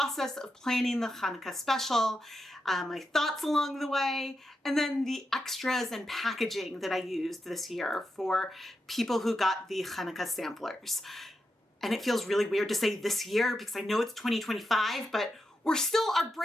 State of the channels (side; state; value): both; normal; correlation 0.87